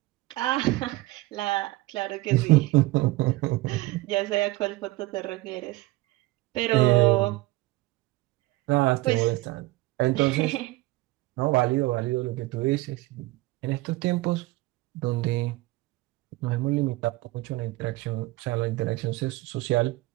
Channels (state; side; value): quieter; left; 19.6 dB